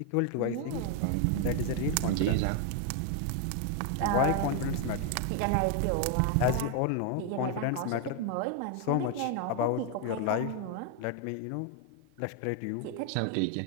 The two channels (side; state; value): both; different; correlation 0.01